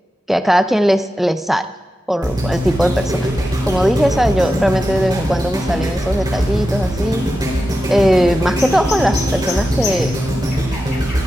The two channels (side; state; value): both; normal; correlation 0.91